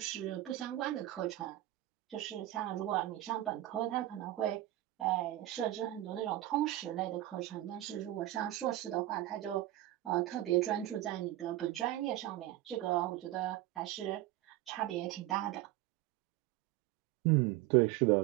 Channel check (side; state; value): left; quieter; 15.1 dB